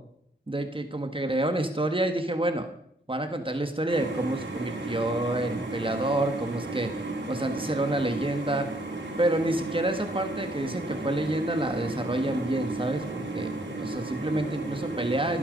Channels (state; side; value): normal; both; correlation 0.66